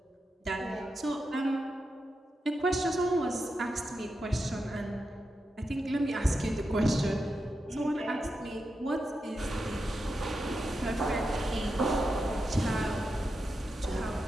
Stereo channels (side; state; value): both; normal; correlation 0.88